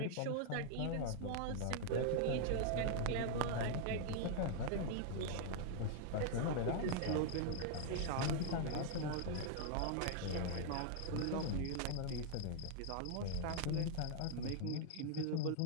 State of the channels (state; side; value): different; both; correlation 0.00